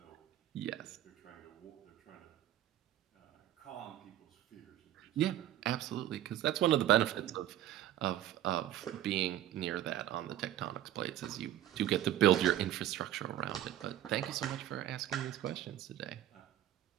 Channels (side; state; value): left; quieter; 12.6 dB